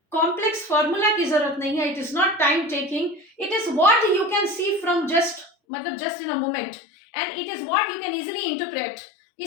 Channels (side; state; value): right; drops out; at 5.5 s